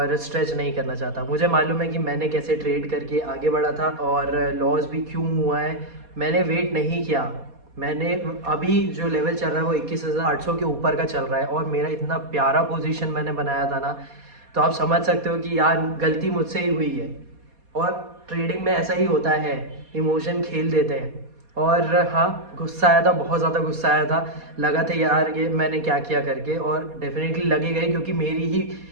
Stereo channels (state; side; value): late; left; 4.2 ms